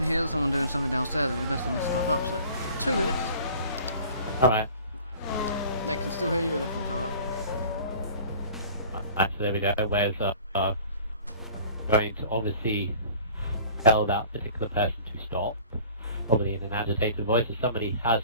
hear someone doing something downstairs and messing this stuff up. So 2 minutes. Alright. They can still hear you and everything's alright. So there we go. Where's going to obviously tell that particular person to stop, probably in an agitated voice, as somebody has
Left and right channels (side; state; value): both; inverted; correlation -0.47